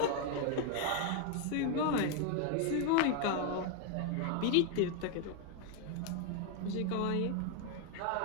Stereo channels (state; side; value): different; both; correlation 0.00